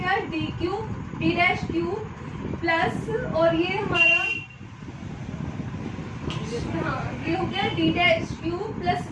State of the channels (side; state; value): both; identical; correlation 1.00